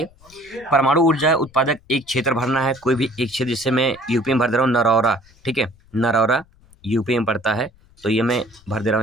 परमाणु ऊर्जा उत्पादक एक क्षेत्र भरना है, कोई भी एक क्षेत्र, जिससे मैं यूपी में भर दे रहा हूँ नरौरा, ठीक है, नरौरा यूपी में पड़ता है, तो ये मैं भर दे रहा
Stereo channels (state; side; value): noise; left; rumble, 29 dB below the sound